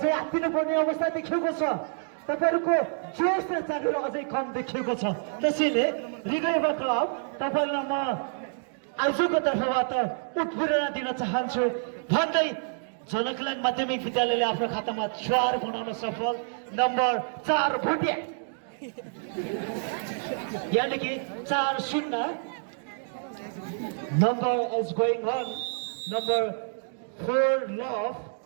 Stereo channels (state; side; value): silent; left; digital silence